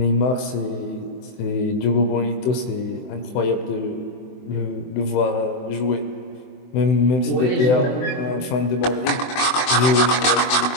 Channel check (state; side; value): late; right; 24 ms